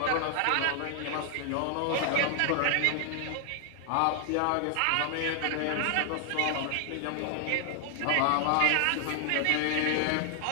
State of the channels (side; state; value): both; different; correlation 0.00